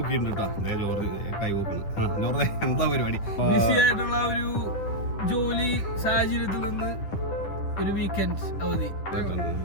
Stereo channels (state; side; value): late; right; 10 ms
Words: കേട്ടോ. അതെ ജോർജ് കൈ പൊക്കണം. ജോർജ് എന്താ പരിപാടി? ബിസി ആയിട്ടുള്ള ഒരു ജോലി സാഹചര്യത്തിൽ നിന്ന് ഒരു വീക്കെൻഡ് അവധി.